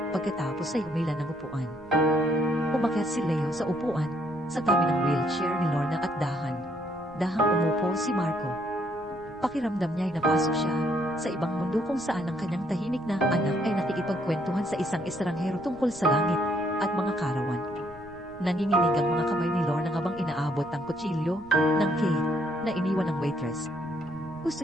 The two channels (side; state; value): right; noise; rumble, 22 dB below the sound